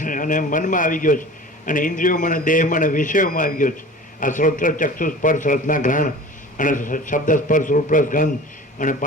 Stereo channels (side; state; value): both; normal; correlation 0.40